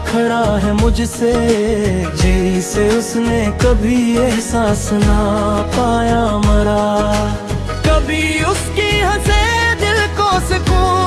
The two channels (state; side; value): identical; both; correlation 1.00